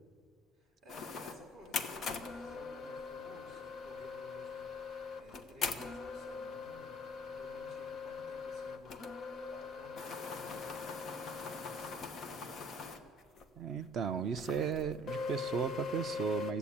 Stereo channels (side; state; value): both; normal; correlation 0.54